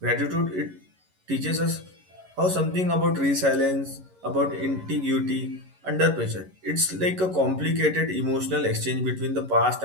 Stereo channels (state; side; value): late; left; 11 ms